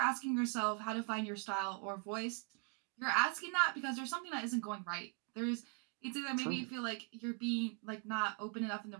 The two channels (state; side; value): quieter; left; 33.7 dB